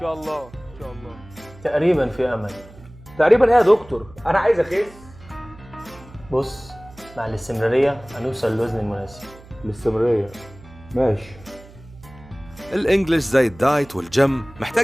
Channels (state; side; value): noise; right; hum, 21 dB below the sound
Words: الله ان شاء الله. تقريبا في امل. تقريبا ايه يا دكتور؟ انا عايز اخس. بص، مع الاستمرارية هنوصل للوزن المناسب. الاستمرارية ماشي. الانجليش زي الدايت والجيم محتاج